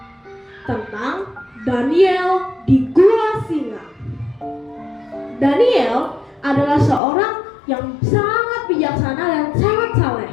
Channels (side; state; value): right; drops out; at 7.0 s